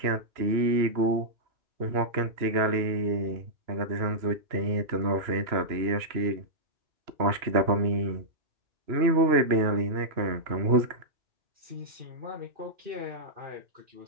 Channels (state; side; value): late; left; 2.9 ms